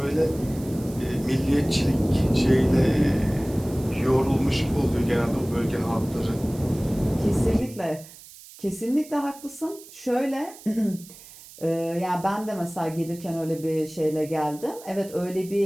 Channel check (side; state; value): right; noise; hiss, 19 dB below the sound